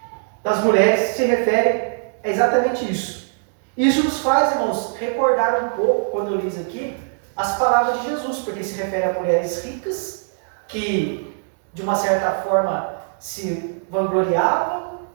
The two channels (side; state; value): left; silent; digital silence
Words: das mulheres, se refere a exatamente isso. Isso nos faz, irmãos, recordar um pouco, quando eu li isso aqui, as palavras de Jesus, porque se refere a mulheres ricas, que de uma certa forma se vangloriavam,